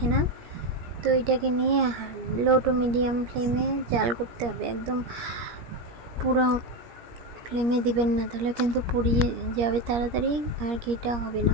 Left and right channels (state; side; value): late; left; 17 ms